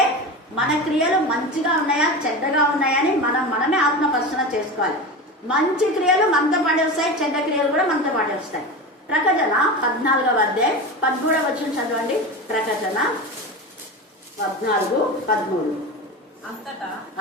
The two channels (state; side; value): normal; both; correlation 0.26